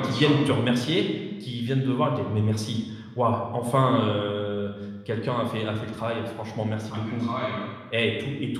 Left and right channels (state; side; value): identical; both; correlation 1.00